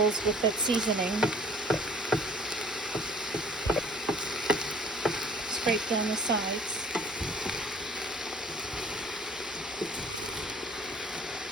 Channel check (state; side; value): normal; both; correlation 0.53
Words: with that seasoning. Scrape down the sides.